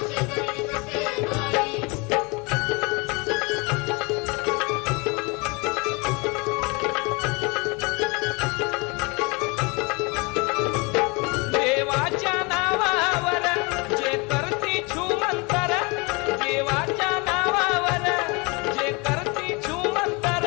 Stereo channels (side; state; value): right; quieter; 28.5 dB